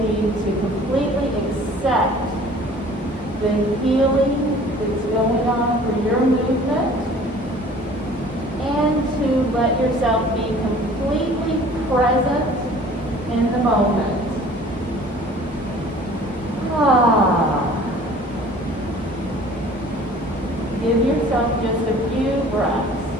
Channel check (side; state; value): both; normal; correlation 0.49